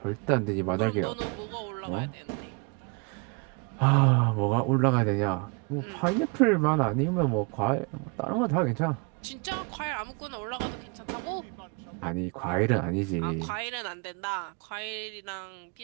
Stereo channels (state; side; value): quieter; left; 32.7 dB